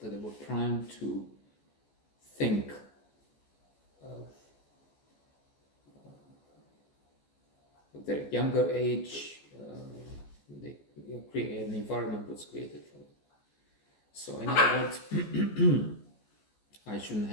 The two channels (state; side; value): late; right; 14 ms